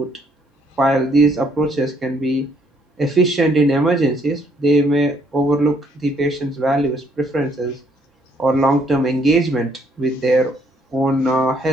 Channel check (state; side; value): normal; both; correlation 0.67